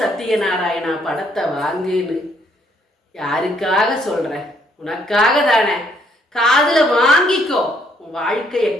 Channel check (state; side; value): normal; both; correlation 0.68